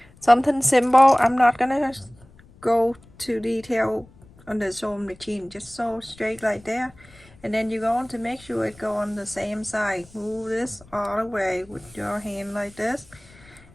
Something simple. I'm not gonna go to detail on the sewing machine, just sew straight like there, and then you're going to make sure it go on the same side. Move this all the way with your hand like this,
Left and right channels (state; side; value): noise; left; rumble, 25 dB below the sound